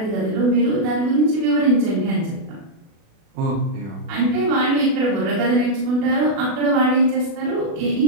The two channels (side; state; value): left; late; 36 ms